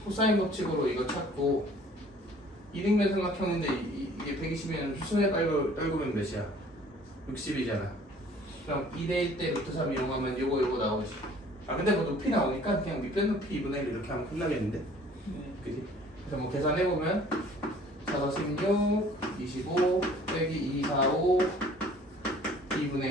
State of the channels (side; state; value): both; normal; correlation 0.53